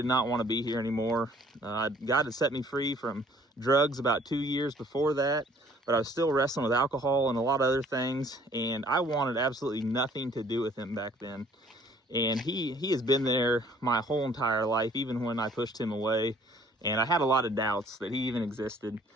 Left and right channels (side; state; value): both; normal; correlation 0.57